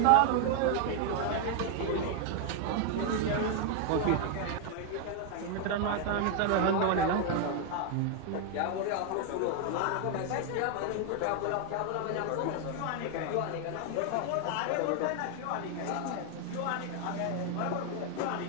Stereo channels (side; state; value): both; different; correlation 0.00